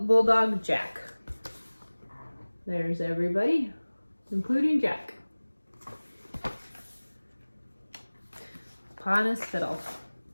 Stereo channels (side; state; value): both; inverted; correlation -1.00